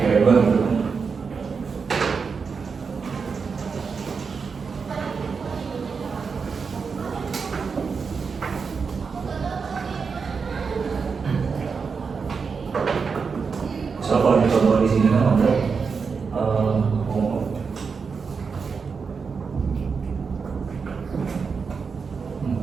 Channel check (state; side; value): quieter; left; 5.4 dB